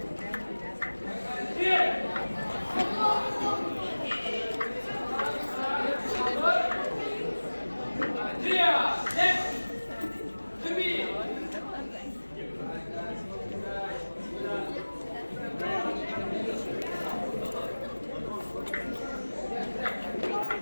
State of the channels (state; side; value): inverted; both; correlation -1.00